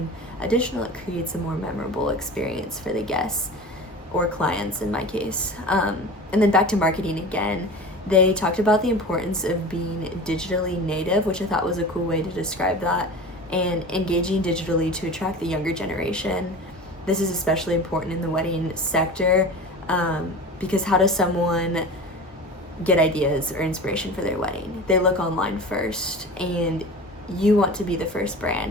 additional, it creates a more memorable experience for the guests or clients in my case. And then back to marketing again, they talked about the importance of being digitally native, which I thought was a cool way to describe that, and engaging digitally to attract the younger generation. This is especially important in the wedding sector, because how does someone get ideas or inspiration for their wedding. They look online first, and you want to be the first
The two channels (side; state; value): both; normal; correlation 0.34